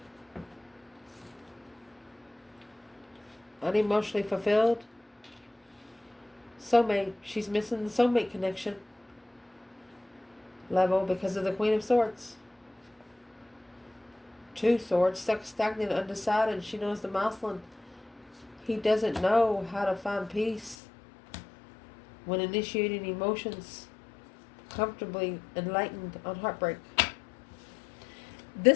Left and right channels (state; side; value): drops out; right; at 20.8 s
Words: Unemotionally fulfilled. Soulmate. She's missing the soulmate connection. Level because of the Queen of Swords. 2 Swords. Stuck, stagnant, undecided. She knows the masculine. He doesn't know how to find peace when initiating emotions. Comfortably enlightened on heartbreak.